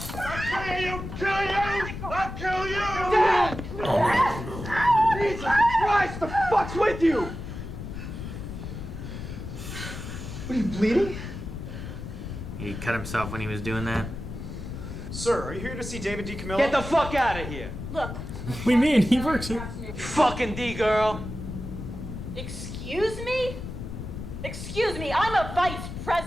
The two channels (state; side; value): noise; left; rumble, 8 dB below the sound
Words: I'll kill you! Dad! Oh no. Jesus Christ, the fuck's with you? What, are you bleeding? He cut himself when he was doing that. Sir, are you here to see David D. Camillo? Get the fuck out of here. Look. What do you mean? He works here. Fucking D-girl. Excuse me? Excuse me, I'm a vice